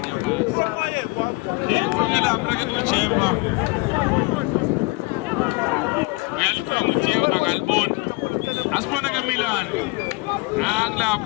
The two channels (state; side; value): quieter; right; 26.8 dB